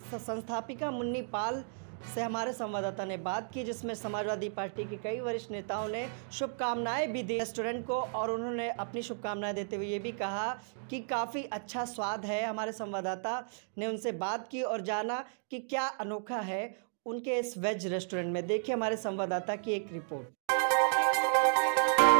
संस्थापिका मुन्नी पाल से हमारे संवाददाता ने बात की, जिसमें समाजवादी पार्टी के कई वरिष्ठ नेताओं ने शुभकामनाएं भी दी रेस्टोरेंट को और उन्होंने अपनी शुभकामनाएं देते हुए ये भी कहा कि काफ़ी अच्छा स्वाद है। हमारे संवाददाता ने उनसे बात की और जाना कि क्या अनोखा है उनके इस वेज रेस्टोरेंट में। देखिए हमारे संवाददाता की एक रिपोर्ट।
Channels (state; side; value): silent; left; digital silence